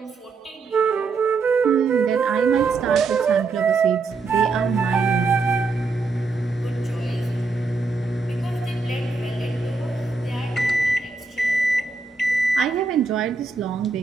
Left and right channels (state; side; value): quieter; left; 4.1 dB